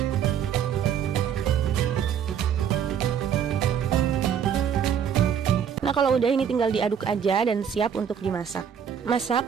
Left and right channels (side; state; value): left; quieter; 8.2 dB